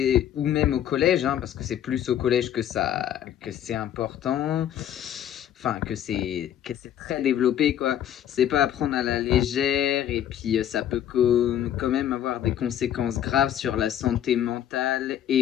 ou même au collège, hein, parce que c'est plus au collège que c'est important, enfin, que c'est très développé, quoi. C'est pas à prendre à la légère, et puis ça peut quand même avoir des conséquences graves sur la santé mentale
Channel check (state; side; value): quieter; right; 10.7 dB